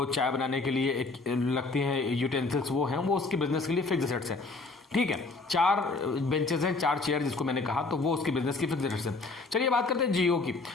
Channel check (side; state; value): right; quieter; 3.6 dB